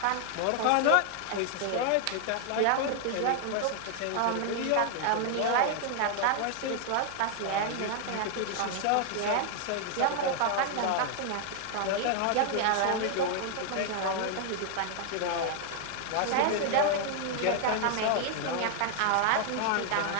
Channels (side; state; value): both; different; correlation 0.00